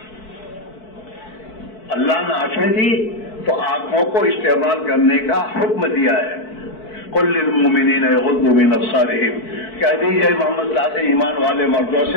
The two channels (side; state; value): right; late; 4.6 ms